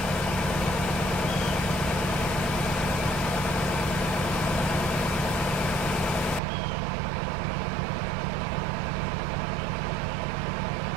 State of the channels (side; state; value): left; drops out; at 6.4 s